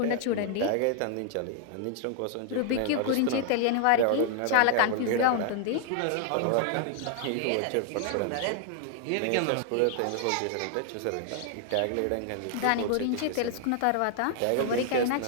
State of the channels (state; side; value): different; both; correlation 0.00